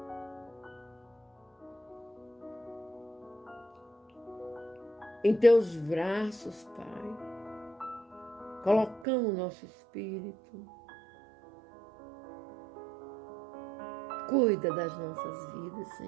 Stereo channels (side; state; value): left; drops out; at 9.1 s